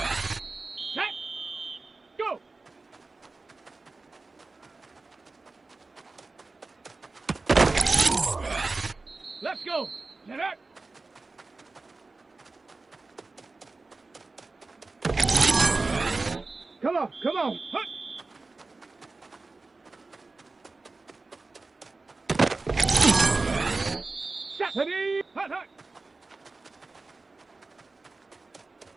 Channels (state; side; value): quieter; left; 3.6 dB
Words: Set. Go. Let's go. Get up. Come on, come on. Hut. Set. Ready. Hut, hut.